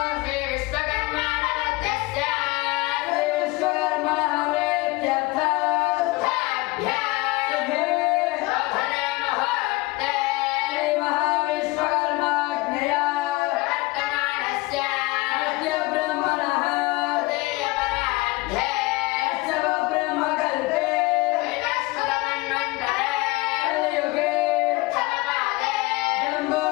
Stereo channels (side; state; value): right; quieter; 22.7 dB